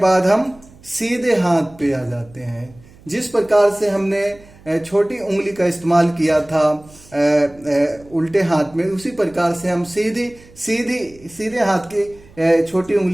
हम सीधे हाथ पे आ जाते हैं। जिस प्रकार से हमने छोटी उंगली का इस्तेमाल किया था उल्टे हाथ में, उसी प्रकार से हम सीधे हाथ की छोटी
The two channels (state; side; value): noise; right; hum, 25 dB below the sound